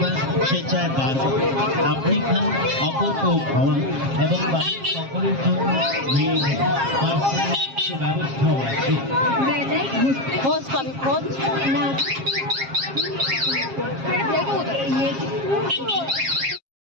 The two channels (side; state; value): left; late; 7.4 ms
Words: সে চায় বারবার। আপনি খান, অপরকেও খাওয়ান এবং বাড়ির সকলের জন্য নিয়ে যান। পার্সেলের সে ব্যবস্থাও আছে। খোঁজ পাবি, খোঁজ।